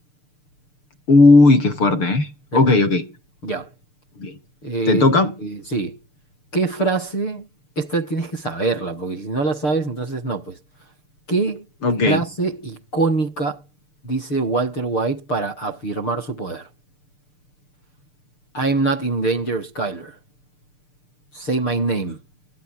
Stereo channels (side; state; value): right; late; 6.7 ms